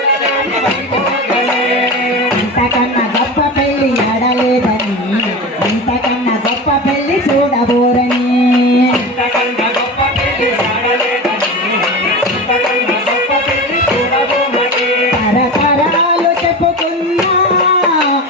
ఇంతకన్నా గొప్ప పెళ్లి ఎడలేదని ఇంతకన్నా గొప్ప పెళ్లి చూడబోరని తరతరాలు చెప్పుకున్నా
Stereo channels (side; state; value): both; normal; correlation 0.28